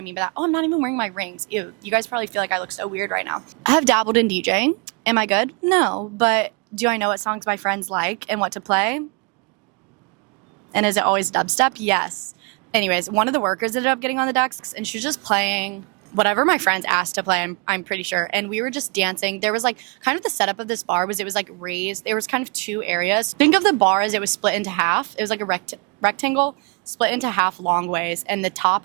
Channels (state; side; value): quieter; left; 32.7 dB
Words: mean by that, oh, I'm not even wearing my rings. Ew, you guys probably feel like I look so weird right now. I have dabbled in DJing. Am I good? No. But do I know what songs my friends like and what to play? And is it always dubstep? Yes. Anyways, one of the workers ended up getting on the decks and she was just playing whatever my friends asked to play, I'm pretty sure. And we were just dancing. There was like kind of the setup of this bar was it was like raised. There was kind of 2 areas. Think of the bar as it was split into half. It was like a rectangle split into half long ways. And the top